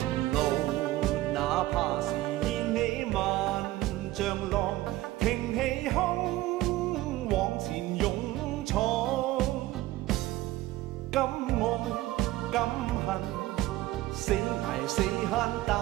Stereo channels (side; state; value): left; quieter; 16.8 dB